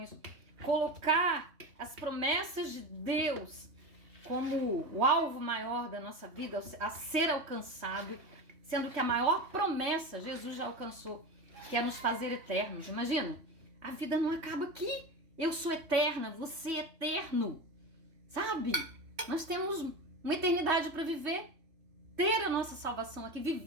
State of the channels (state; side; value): late; left; 3.1 ms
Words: colocar as promessas de Deus como o alvo maior da nossa vida a ser alcançado, sendo que a maior promessa Jesus já alcançou, que é nos fazer eternos. Imagina, a vida não acaba aqui. Eu sou eterna, você é eterno, sabe? Nós temos uma eternidade para viver, ter a nossa salvação aqui,